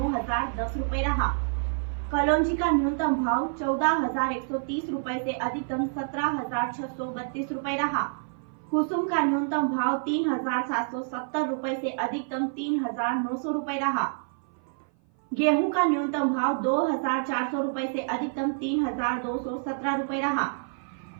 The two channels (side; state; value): left; silent; 56 dB below the other